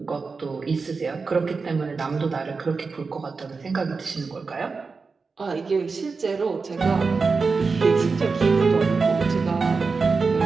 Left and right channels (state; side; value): quieter; left; 4.5 dB